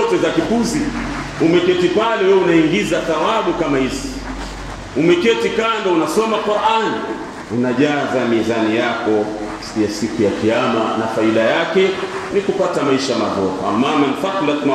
za kipuzi, umeketi pale wewe unaingiza thawabu kama hizi. Umeketi kando unasoma Qur'an, unajaza mizani yako ya siku ya kiyama, na faida yake ni kupata maisha mazuri. Amma man thaqalat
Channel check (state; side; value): identical; both; correlation 1.00